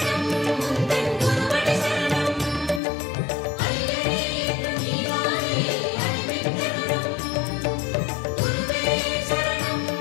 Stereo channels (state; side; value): drops out; right; at 2.8 s